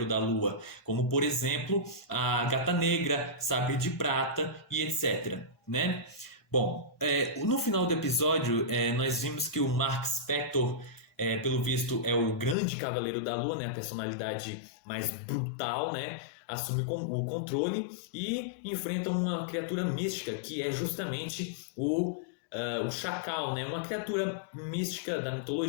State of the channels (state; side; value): drops out; right; at 12.6 s